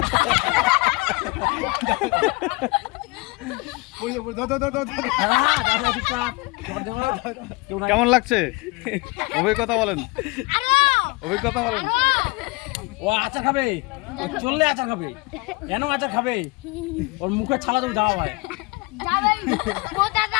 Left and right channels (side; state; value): right; quieter; 25.1 dB